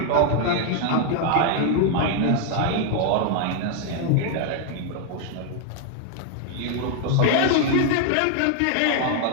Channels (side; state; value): both; different; correlation 0.00